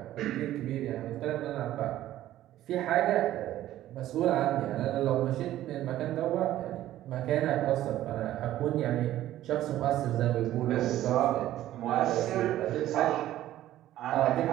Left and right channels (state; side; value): quieter; left; 13.6 dB